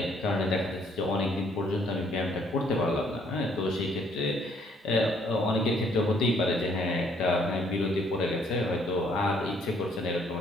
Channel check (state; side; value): normal; both; correlation 0.65